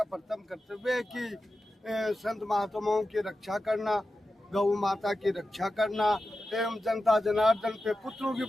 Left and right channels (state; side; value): normal; both; correlation 0.92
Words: प्रथम कर्तव्य है कि संत महात्माओं की रक्षा करना, गौ माता की रक्षा करना एवं जनता जनार्दन पे पुत्रों की